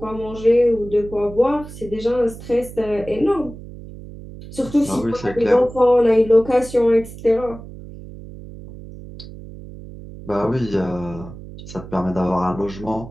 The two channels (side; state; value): right; noise; hum, 14 dB below the sound